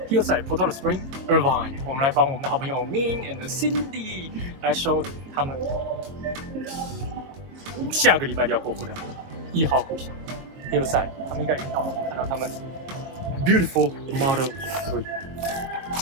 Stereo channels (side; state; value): left; late; 22 ms